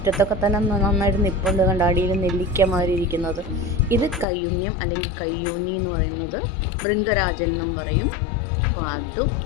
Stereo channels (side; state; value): right; drops out; at 4.2 s